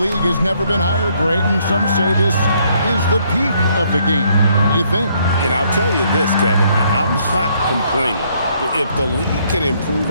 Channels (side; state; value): both; inverted; correlation -0.69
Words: has never been higher, Greg, and some say this is the peak of the game. What do you think? And I'll tell you this, Kevin, I'm not complaining. If the league can improve